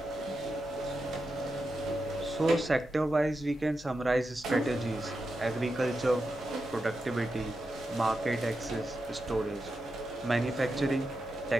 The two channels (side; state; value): both; normal; correlation 0.88